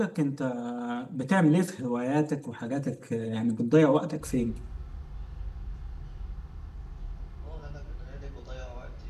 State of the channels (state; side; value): identical; both; correlation 1.00